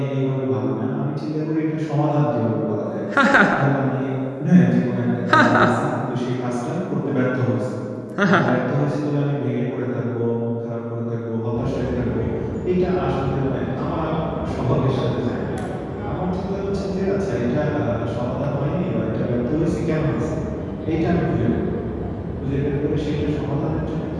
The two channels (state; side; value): identical; both; correlation 1.00